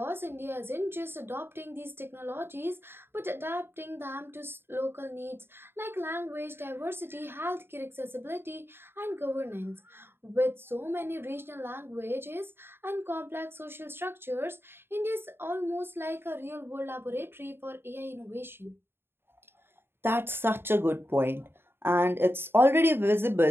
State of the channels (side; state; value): left; late; 0.11 ms